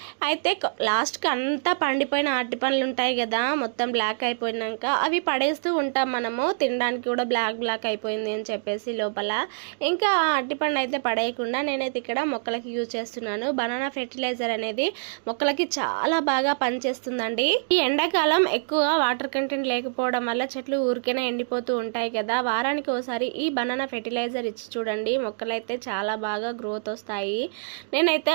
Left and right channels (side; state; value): left; silent; digital silence